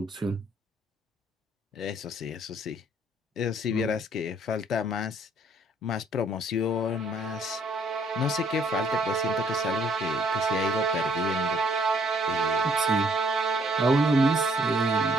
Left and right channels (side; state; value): both; normal; correlation 0.64